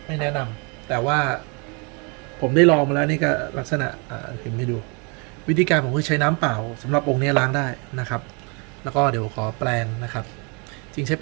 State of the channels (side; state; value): left; quieter; 32.9 dB